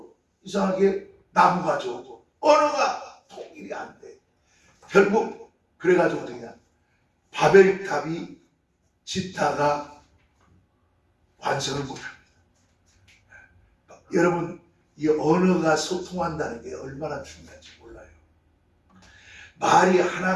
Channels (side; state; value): both; identical; correlation 1.00